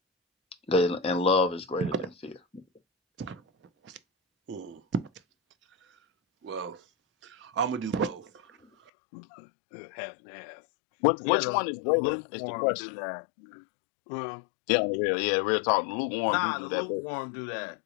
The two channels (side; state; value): right; drops out; at 8.9 s